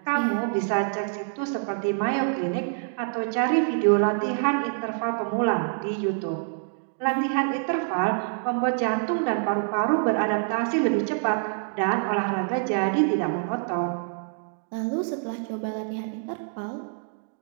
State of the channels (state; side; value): silent; left; digital silence